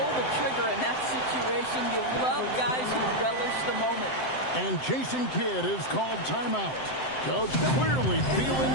the trigger in that situation. You love guys who relish the moment. And Jason Kidd is called timeout. Coach clearly feeling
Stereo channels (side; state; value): right; late; 7.8 ms